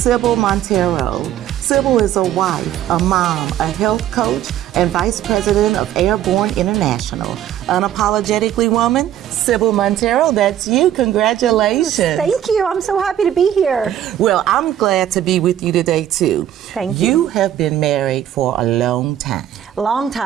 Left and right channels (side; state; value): left; quieter; 11.4 dB